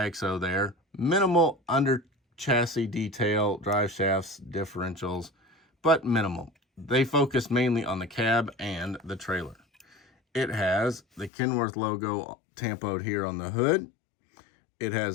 there. Minimal under chassis detail, drive shafts, differentials, but minimal. They focus mainly on the cab and the trailer. It has the Kenworth logo tampoed here on the hood. It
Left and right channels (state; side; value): drops out; right; at 11.3 s